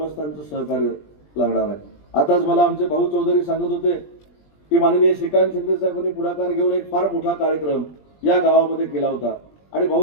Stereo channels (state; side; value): late; right; 20 ms